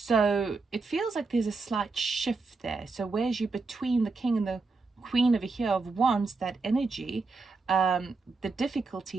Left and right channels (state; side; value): quieter; left; 4.0 dB